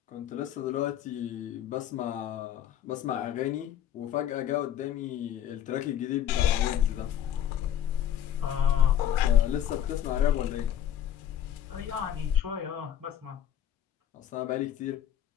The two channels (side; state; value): right; quieter; 10.2 dB